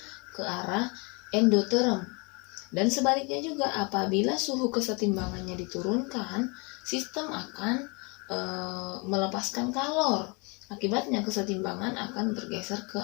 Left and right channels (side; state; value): right; quieter; 30.6 dB